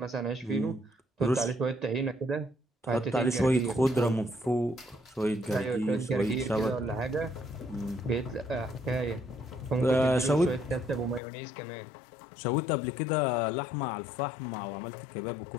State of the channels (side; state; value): right; drops out; at 11.2 s